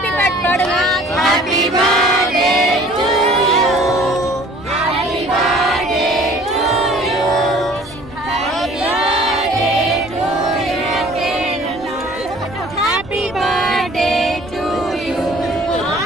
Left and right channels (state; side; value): normal; both; correlation 0.51